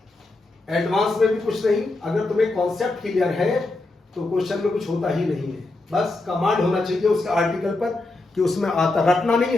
एडवांस में भी कुछ नहीं, अगर तुम्हें कॉन्सेप्ट क्लियर है तो क्वेश्चन में कुछ होता ही नहीं है, बस कमांड होना चाहिए उसका आर्टिकल पर कि उसमें आता, रटना नहीं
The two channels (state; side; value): quieter; right; 3.1 dB